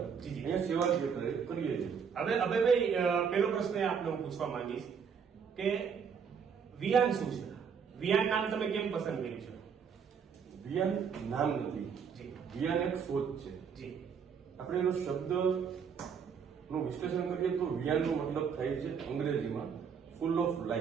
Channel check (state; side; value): quieter; left; 6.7 dB